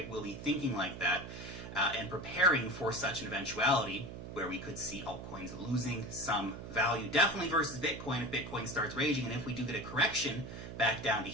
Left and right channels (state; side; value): noise; right; hum, 10 dB below the sound